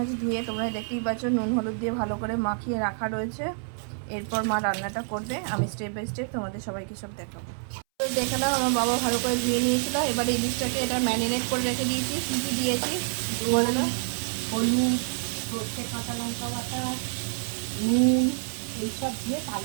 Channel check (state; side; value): silent; left; 60 dB below the other